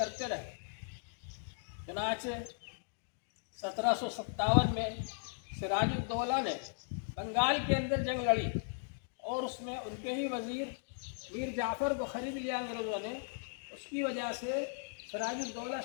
رہے۔ چنانچہ 1757 میں سراج الدولہ نے بنگال کے اندر جنگ لڑی، اور اس میں ان کے ہی وزیر میر جعفر کو خرید لیا انگریزوں نے۔ اس کی وجہ سے سراج الدولہ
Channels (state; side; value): silent; right; digital silence